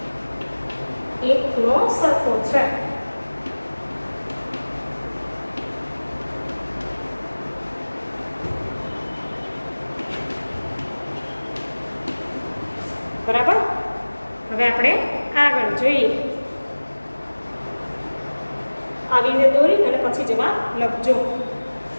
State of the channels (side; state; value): both; inverted; correlation -1.00